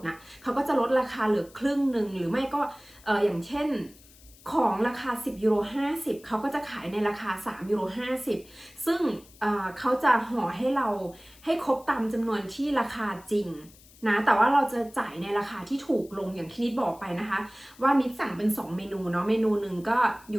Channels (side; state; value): left; noise; hiss, 24 dB below the sound